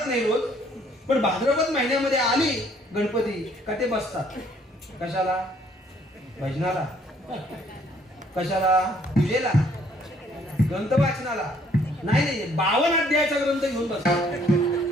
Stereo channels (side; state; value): both; normal; correlation 0.63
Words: नाही रोज, पण भाद्रपद महिन्यामध्ये आली गणपती का ते बसतात. कशाला? भजनाला. कशाला? पूजेला, ग्रंथ वाचनाला. नाही, 52 अध्यायाचा ग्रंथ घेऊन बसतात.